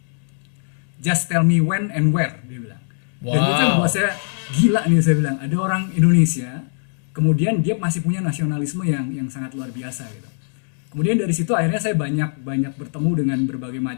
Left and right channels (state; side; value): silent; right; digital silence